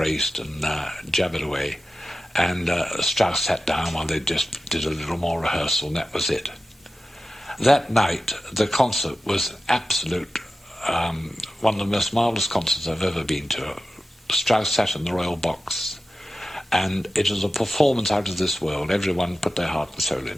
and jabbered away. And Strauss sat down while they just did a little more rehearsal, and that was it. That night, the concert was absolute, one of the most marvellous concerts I've ever been to. Strauss sat in the royal box, and it was a performance out of this world. Everyone put their heart and soul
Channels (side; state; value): both; normal; correlation 0.93